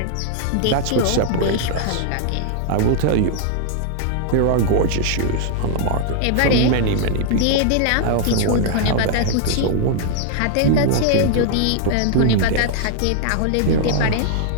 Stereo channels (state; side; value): different; both; correlation 0.00